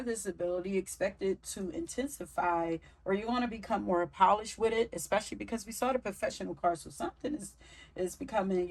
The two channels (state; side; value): identical; both; correlation 1.00